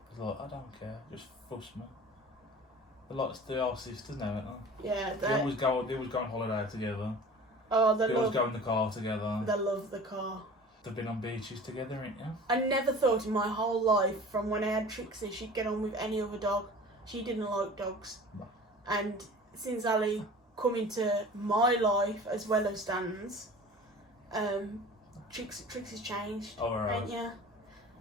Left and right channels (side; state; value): both; normal; correlation 0.41